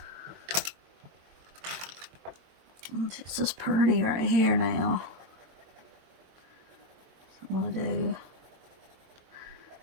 This is pretty right here now. We'll do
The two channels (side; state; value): left; late; 22 ms